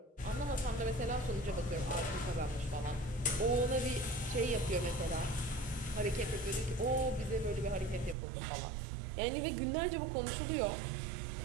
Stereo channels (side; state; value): left; drops out; at 8.2 s